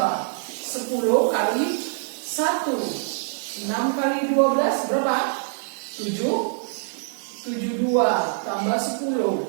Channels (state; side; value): silent; left; 56 dB below the other